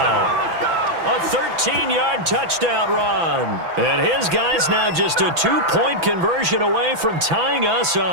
A 13-yard touchdown run. And his guy's now just a 2-point conversion away from tying us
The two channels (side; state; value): left; late; 6.0 ms